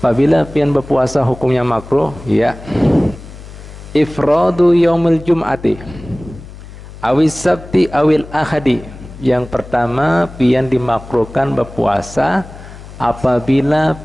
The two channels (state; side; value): noise; left; hum, 16 dB below the sound